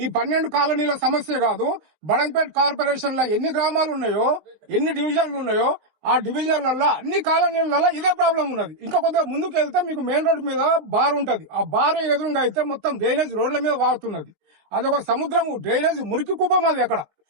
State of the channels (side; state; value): left; late; 19 ms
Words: 12 కాలనీల సమస్య కాదు. బడంపేట్ కార్పొరేషన్ లో ఎన్ని గ్రామాలు ఉన్నాయో, ఎన్ని డివిజన్లు ఉన్నాయో, ఆ డివిజన్లలో అన్ని కాలనీలలో ఇదే ప్రాబ్లం ఉన్నది. ఇంకా కొద్దిగా ముందుకు వెళ్తే మీకు మెయిన్ రోడ్ మీద బార్ ఉంటది. ఆ బార్ ఎదురుగా అయితే మొత్తం డ్రైనేజ్ రోడ్ల మీద వాడుతున్నది. అదొక సముద్రము, డ్రైనేజ్ మురికి కుప్పం. అది అక్కడ